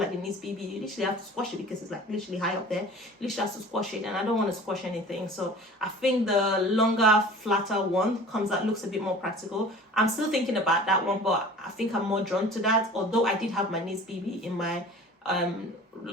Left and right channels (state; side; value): normal; both; correlation 0.43